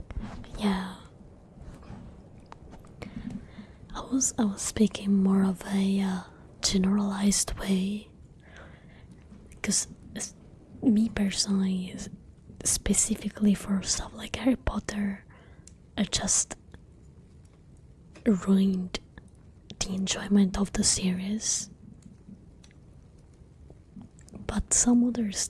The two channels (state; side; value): identical; both; correlation 1.00